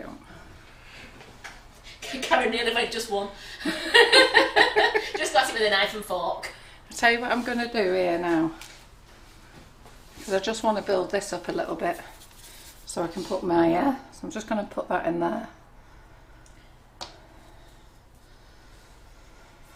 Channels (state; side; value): identical; both; correlation 1.00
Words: Karen nearly went just one. Just got it with a knife and fork. I'll tell you what I'm going to do here now. Because I just want to build this up a little bit. So I can put my... so I'm just going to put that in there.